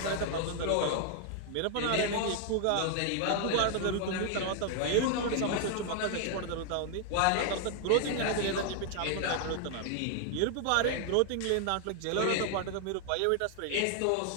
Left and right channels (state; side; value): different; both; correlation 0.00